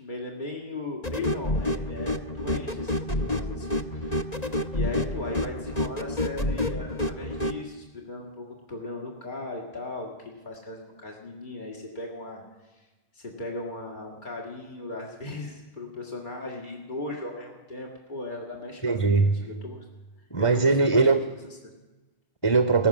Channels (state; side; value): late; right; 1.9 ms